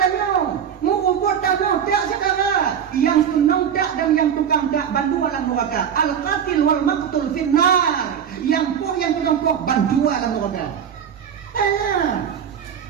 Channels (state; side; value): quieter; left; 8.3 dB